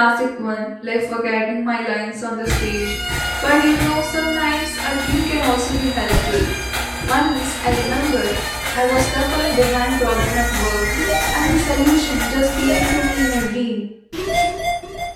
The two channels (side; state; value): both; identical; correlation 1.00